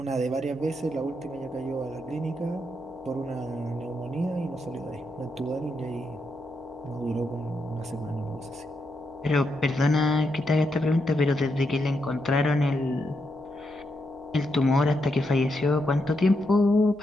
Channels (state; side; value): noise; right; hum, 28 dB below the sound